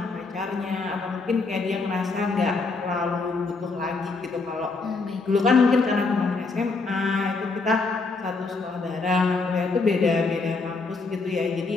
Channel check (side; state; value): right; quieter; 3.9 dB